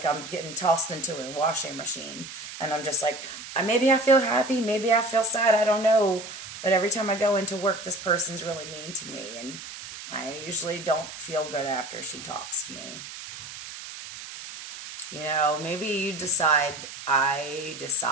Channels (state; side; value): noise; right; hiss, 12 dB below the sound